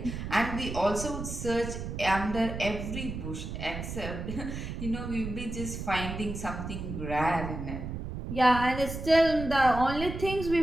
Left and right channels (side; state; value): right; noise; rumble, 6 dB below the sound